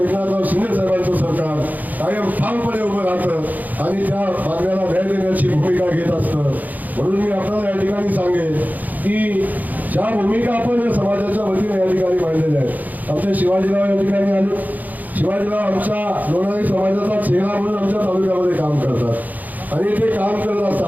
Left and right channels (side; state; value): left; late; 0.081 ms